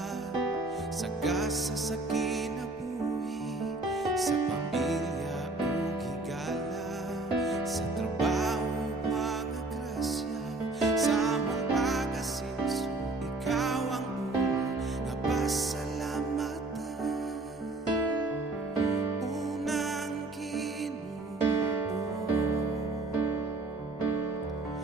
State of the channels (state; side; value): quieter; left; 3.0 dB